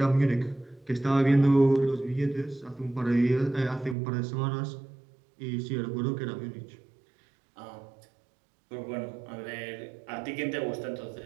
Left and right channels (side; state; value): left; drops out; at 4.0 s